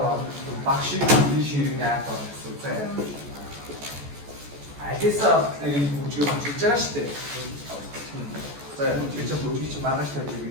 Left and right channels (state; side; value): late; left; 14 ms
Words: 막신 이 시리냐 또. 알겠어. 이 부지가 진짜 시대. За чи бүжиг чи маргааш тавьж